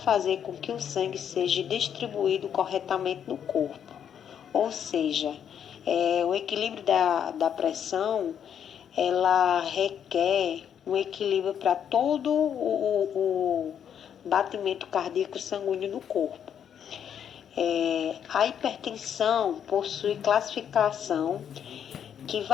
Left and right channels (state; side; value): quieter; right; 8.7 dB